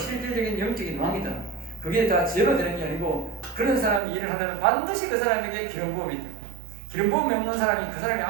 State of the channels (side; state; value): left; drops out; at 4.0 s